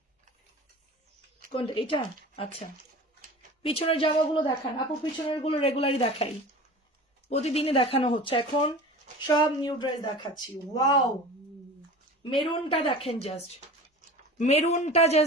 কোনটা? এটা। আচ্ছা পিছনের জামাগুলো দেখান আপু, পিছনের গুলো রেগুলারই দেখাই, প্রতিদিনই দেখানো হচ্ছে এখন, সব নিউ ড্রেস দেখাচ্ছি। ওয়াও, মেরুনটা দেখেন, জাস্ট মেরুনটা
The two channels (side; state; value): both; normal; correlation 0.37